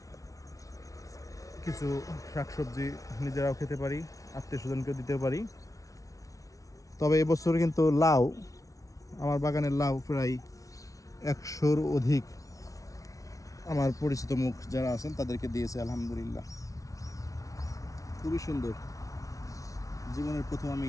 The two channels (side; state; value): right; late; 0.17 ms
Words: কিছু শাকসবজি নিজেরাও খেতে পারি, আত্মীয় স্বজনকেও দিতে পারি। তবে এবছর কিন্তু লাউ, আমার বাগানের লাউ প্রায় 100-র অধিক আমার পরিচিত মুখ যারা আছেন তাদেরকে দিয়েছে। আলহামদুলিল্লাহ, খুবই সুন্দর। জীবনের প্রথম